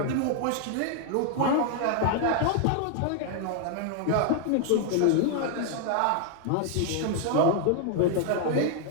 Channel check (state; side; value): different; both; correlation 0.00